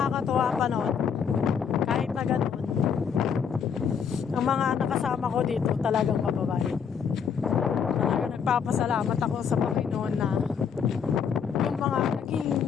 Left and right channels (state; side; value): quieter; right; 7.1 dB